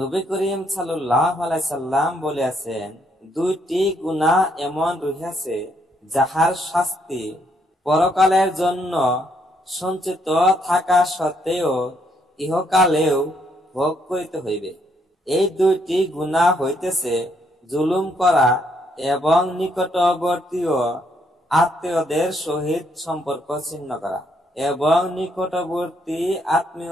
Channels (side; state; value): both; normal; correlation 0.73